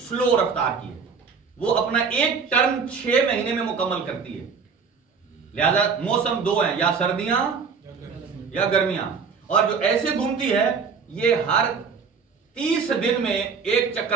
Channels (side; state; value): left; quieter; 5.6 dB